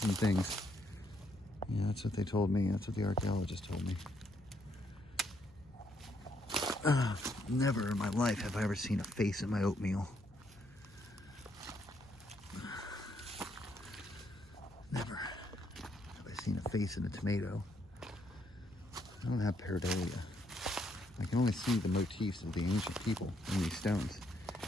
and things. Yeah, that's what they told me. That's what the archaeologist told me. Never in my life have I ever seen a face in my oatmeal. face in a tomato. I don't have pareidolia. I can only see the motifs of the ancient people in these stones,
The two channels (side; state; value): left; noise; hum, 25 dB below the sound